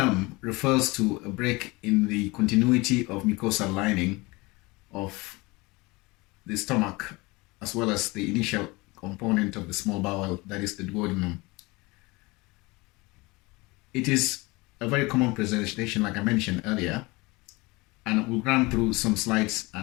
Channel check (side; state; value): right; quieter; 23.9 dB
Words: refers to a break in the continuity of mucosal lining of the stomach, as well as the initial component of the small bowel, that is the duodenum. It is a very common presentation, like I mentioned earlier, and we'll run through some slides